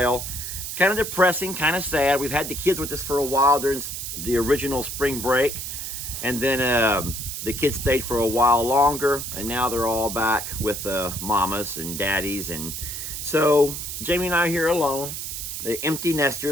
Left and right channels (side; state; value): right; noise; hiss, 6 dB below the sound